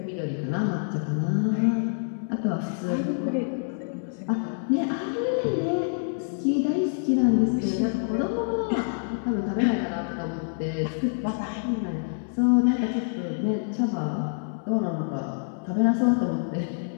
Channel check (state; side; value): silent; right; 60 dB below the other